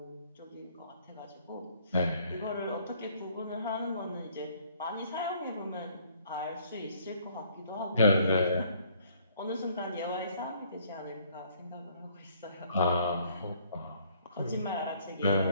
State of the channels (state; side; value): inverted; both; correlation -0.62